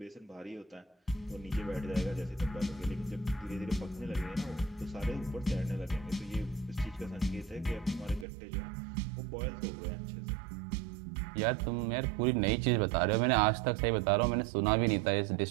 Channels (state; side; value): drops out; left; at 8.2 s